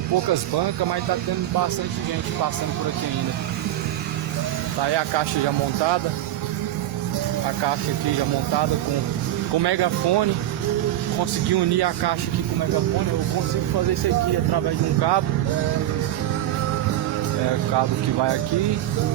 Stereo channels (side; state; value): left; quieter; 13.2 dB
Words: poucas bancas, mas está tendo bastante gente passando por aqui ainda. Tá aí a caixa já montada. A caixa aqui já montada com megafone. Consegui unir a caixa aqui com o megafone. Eu consigo fazer isso aqui através de um cabo. O cabo que vai aqui